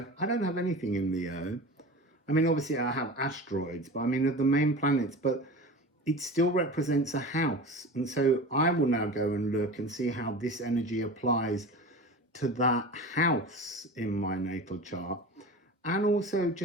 I don't have anything in Leo. I mean, obviously I have asteroids, but I mean, of the main planets, but it still represents a house. And so I will now go and look and see how this energy applies to that house in my natal chart. And also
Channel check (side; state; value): both; normal; correlation 0.33